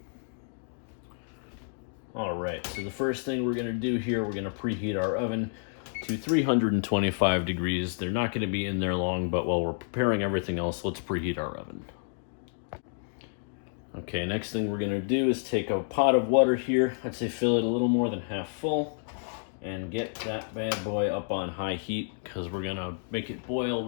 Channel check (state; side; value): silent; right; digital silence